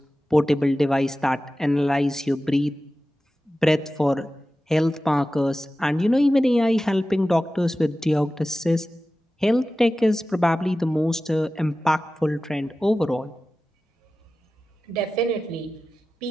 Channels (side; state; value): both; normal; correlation 0.95